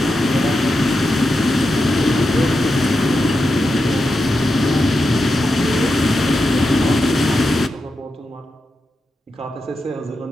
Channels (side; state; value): both; normal; correlation 0.88